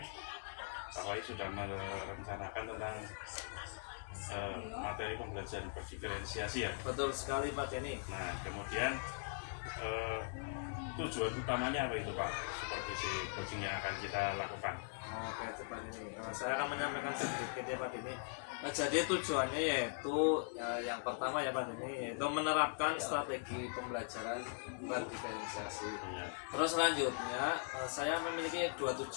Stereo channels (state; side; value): silent; right; digital silence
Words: Pak Wahyu sudah merencanakan tentang materi pembelajaran berdiferensiasi ya. Betul sekali Pak Denny. Nah, kemudian tujuan utamanya apa itu Pak? Supervisi coaching yang akan kita lakukan. Oke, Pak Denny. Saya akan menyampaikan sedikit ya Pak Denny. Jadi tujuannya yaitu yang pertama ya Pak Denny, yaitu menerapkan strategi pembelajaran berdiferensiasi. Ya. Terus selanjutnya saya memiliki dua